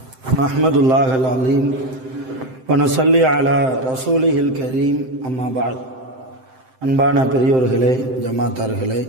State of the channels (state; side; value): late; left; 7.7 ms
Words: نحمد الله العظيم ونصلي على رسوله الكريم. أما بعد. அன்பான பெரியோர்களே, ஜமாத்தார்களே,